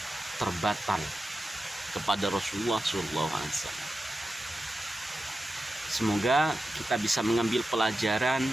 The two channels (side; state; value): both; normal; correlation 0.92